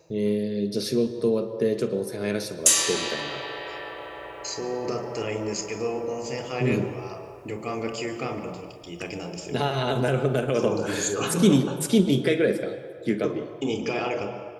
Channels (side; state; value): both; identical; correlation 1.00